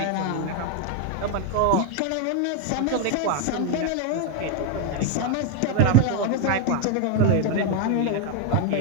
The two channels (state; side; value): different; both; correlation 0.01